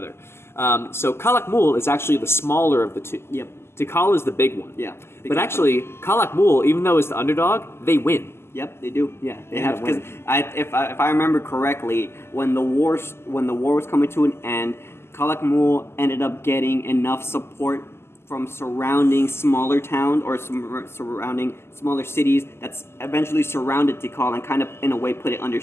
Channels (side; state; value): right; late; 0.12 ms